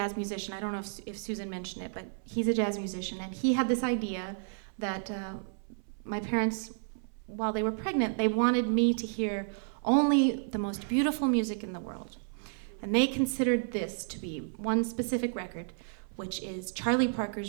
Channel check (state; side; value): silent; left; 57 dB below the other